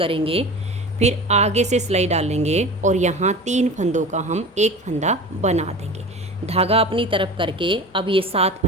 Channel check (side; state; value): both; normal; correlation 0.34